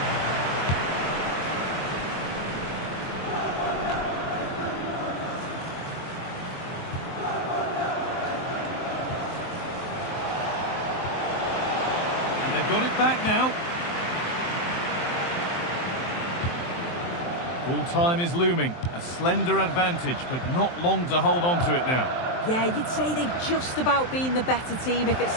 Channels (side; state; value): right; late; 23 ms